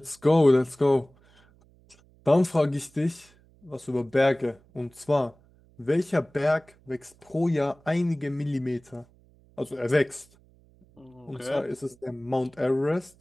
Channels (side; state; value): right; noise; hum, 30 dB below the sound